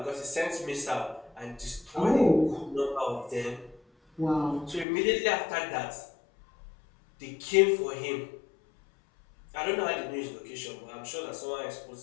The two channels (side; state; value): right; drops out; at 4.9 s